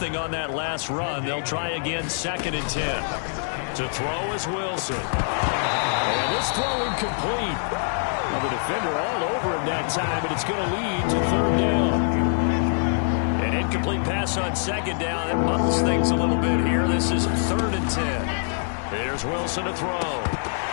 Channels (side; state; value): right; silent; 60 dB below the other